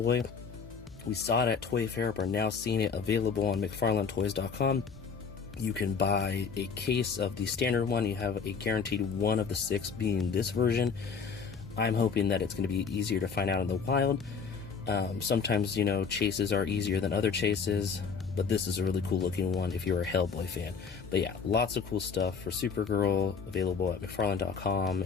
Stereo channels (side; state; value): right; quieter; 5.8 dB